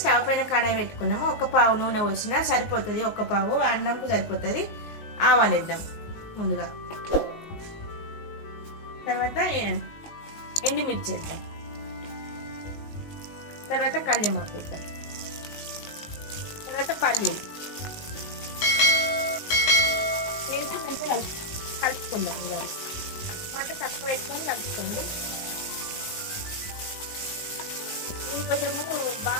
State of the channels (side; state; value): right; late; 19 ms